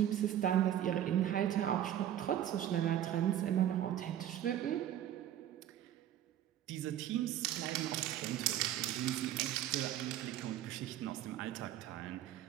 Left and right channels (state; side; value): quieter; left; 11.5 dB